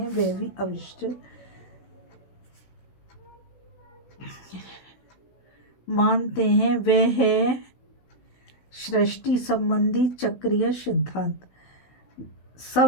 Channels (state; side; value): late; right; 16 ms